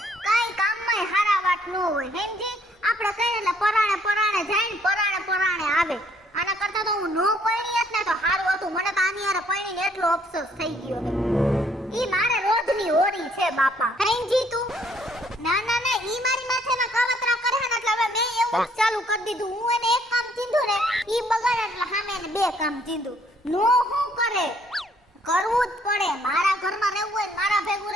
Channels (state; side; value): normal; both; correlation 0.65